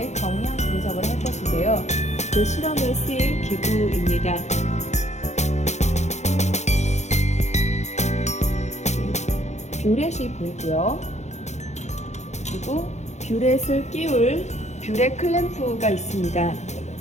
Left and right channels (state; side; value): late; right; 0.33 ms